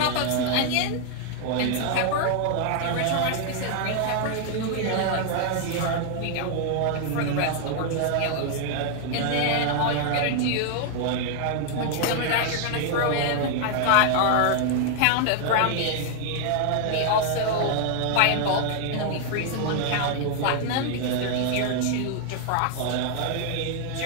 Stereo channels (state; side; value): different; both; correlation 0.00